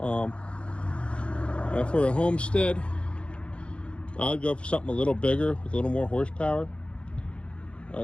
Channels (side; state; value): right; late; 0.059 ms